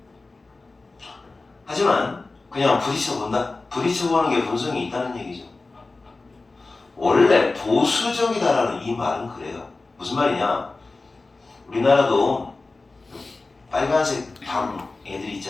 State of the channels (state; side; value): quieter; right; 3.5 dB